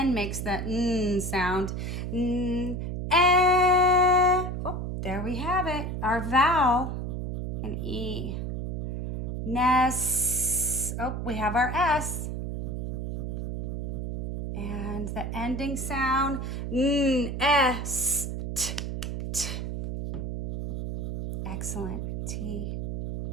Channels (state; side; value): noise; right; hum, 3 dB below the sound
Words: makes the N sound. Oh, there we have it. Our vowel, an E. Nest. Oh, we have our S. And the ending sound, S, T, T. Excellent, T.